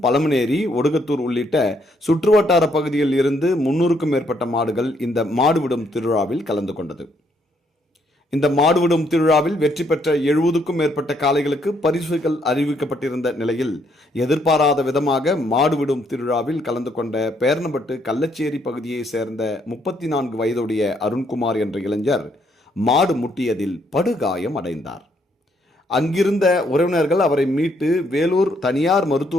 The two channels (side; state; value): both; normal; correlation 0.71